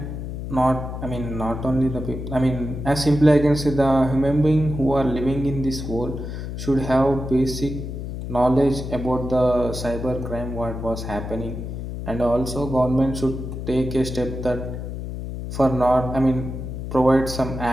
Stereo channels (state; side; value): noise; left; hum, 7 dB below the sound